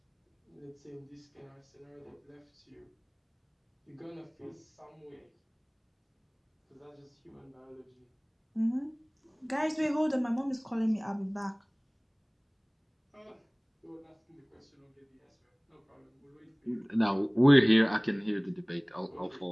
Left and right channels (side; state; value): both; identical; correlation 1.00